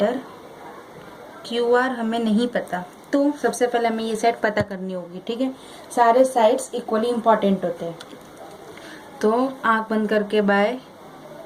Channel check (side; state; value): both; identical; correlation 1.00